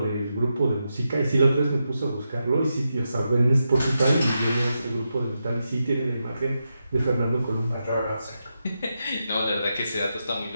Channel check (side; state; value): both; inverted; correlation -0.87